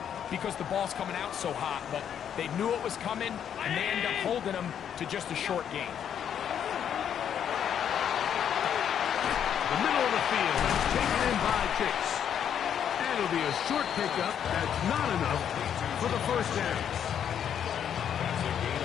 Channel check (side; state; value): right; quieter; 8.9 dB